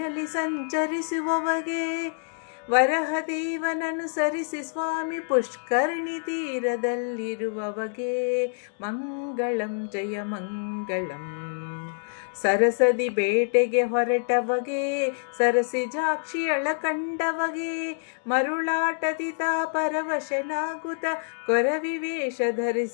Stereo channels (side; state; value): right; silent; digital silence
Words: ಸಂಚರಿಸುವವಗೆ, ವರಹದೇವನನುಸರಿಸಿ ಸ್ವಾಮಿ ಪುಷ್ಕರಣಿ ತೀರದಲ್ಲಿರುವವಗೆ, ಮಂಗಳಂ ಜಯ ಮಂಗಳಂ. ಸರಸದಿ ಬೇಟೆಗೆ ಹೊರಟವಗೆ, ಸರಸಿಜಾಕ್ಷಿಯಳ ಕಂಡವಗೆ, ಮರುಳಾಟದಿ ತಾ ಪರವಶನಾಗುತ್ತ ಕೊರವಿವೇಷ